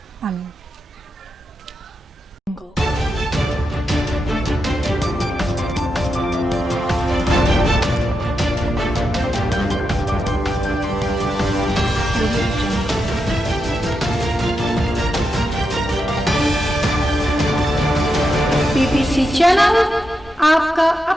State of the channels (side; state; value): both; normal; correlation 0.86